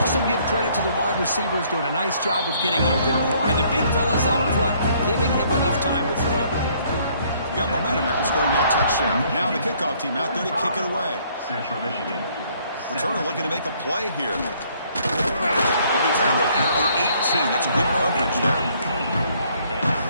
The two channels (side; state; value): both; inverted; correlation -0.63